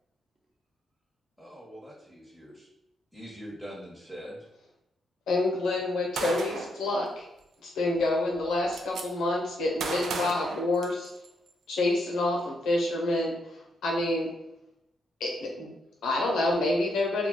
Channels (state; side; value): normal; both; correlation 0.77